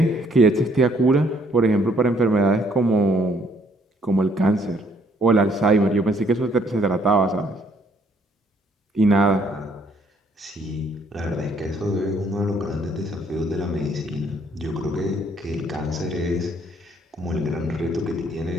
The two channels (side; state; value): both; normal; correlation 0.66